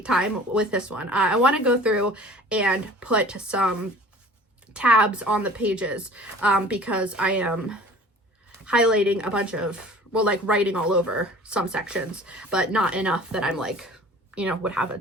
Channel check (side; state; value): both; normal; correlation 0.46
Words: time with this one. I want to go through and put some tabs on the pages because I am highlighting a bunch of, writing all over some sections, but not enough that I'm would have a